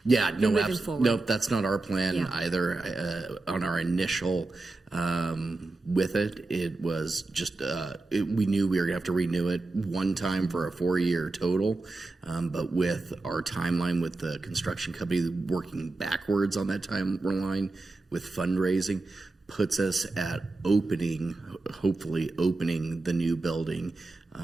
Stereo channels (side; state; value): left; quieter; 3.2 dB